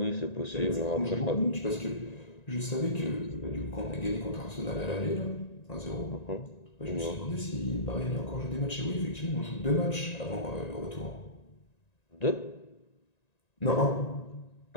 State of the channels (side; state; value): right; late; 1.9 ms